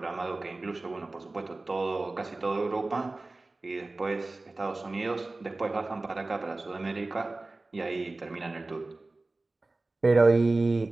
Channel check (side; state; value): left; quieter; 3.2 dB